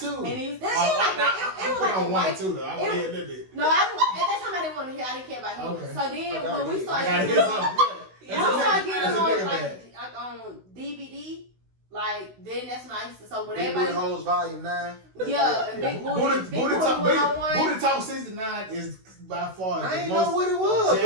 And he was, it Oh, was like I it was like a on one white. too though. I want to hear a little bit. No, at that time I didn't want to hear. I didn't care about him. Okay. So then I gotta when we hear. I started gotta getting hear on, something. Yeah. when we started getting That's a on nigga like on DVD, like then that's when I used to. So when Big Booty everybody, Hoes Volume 9. yeah, and Big Booty, Booty Big Booty Talk 101. Booty Talk 69 is by far I the ain't know most what it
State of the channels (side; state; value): left; late; 16 ms